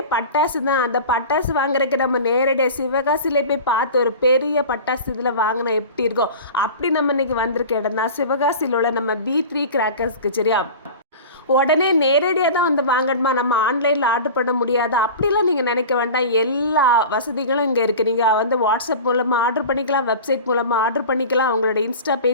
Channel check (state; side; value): inverted; both; correlation -0.35